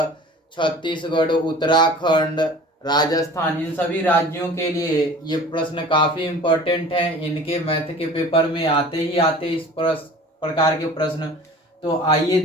छत्तीसगढ़, उत्तराखंड, राजस्थान, इन सभी राज्यों के लिए ये प्रश्न काफी इम्पोर्टेंट है। इनके मैथ के पेपर में आते ही आते इस प्रकार के प्रश्न। तो आइए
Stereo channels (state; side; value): normal; both; correlation 0.43